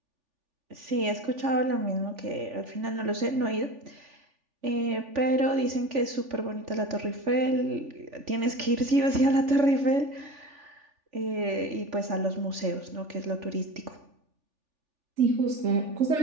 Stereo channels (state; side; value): late; left; 3.4 ms